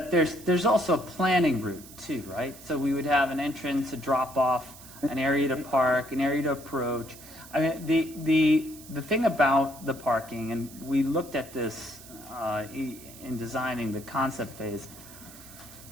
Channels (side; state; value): right; noise; hiss, 18 dB below the sound